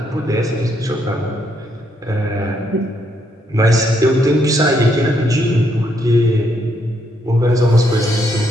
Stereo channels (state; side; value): normal; both; correlation 0.75